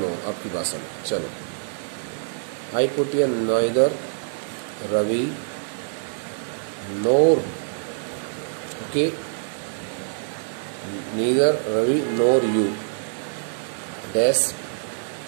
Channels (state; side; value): silent; left; digital silence